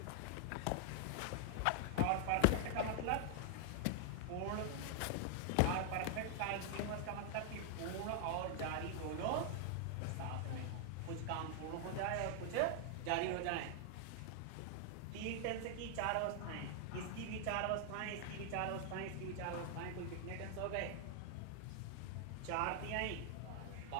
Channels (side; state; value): both; different; correlation 0.00